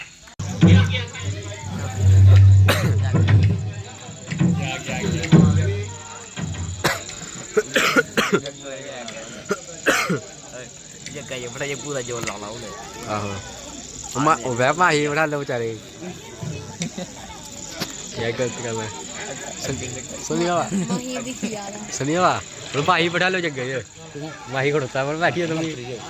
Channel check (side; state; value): both; identical; correlation 1.00